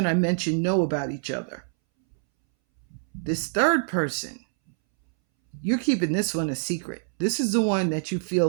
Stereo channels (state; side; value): silent; left; 61 dB below the other